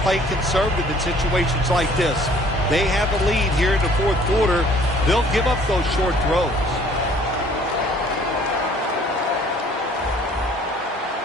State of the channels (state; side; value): normal; both; correlation 0.56